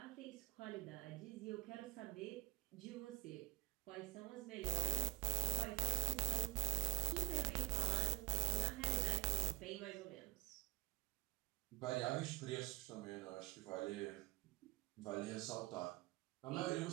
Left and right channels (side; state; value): left; quieter; 23.7 dB